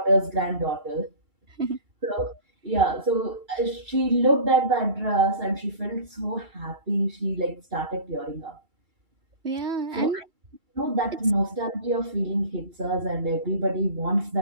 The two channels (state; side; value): late; left; 2.3 ms